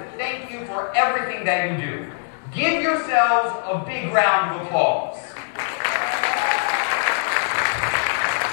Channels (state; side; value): silent; right; 62 dB below the other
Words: thank you for everything that you do. Give yourselves a big round of applause.